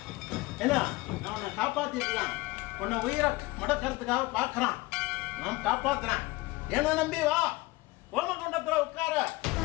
என்ன நான் உன்னை காப்பாத்திருக்கலாம், உன்னை உயிரை முடக்கிறதுக்காக பார்க்குறான். நான் காப்பாத்துறேன், என்ன நம்பி வா, ஓமகுண்டத்தில் உட்கார.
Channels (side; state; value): right; quieter; 21.5 dB